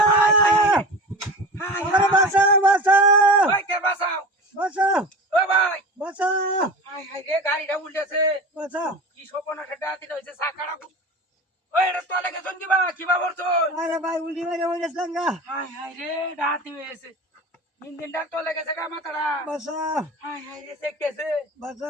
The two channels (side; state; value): both; normal; correlation 0.33